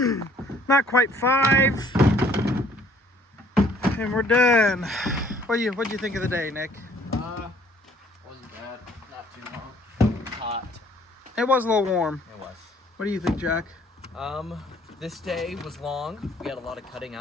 not quite 5, and we're done. What do you think of the day, Nick? I It was a little warm. It was. What do you think, Jack? This day was long. We had a lot of cutting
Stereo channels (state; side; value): normal; both; correlation 0.59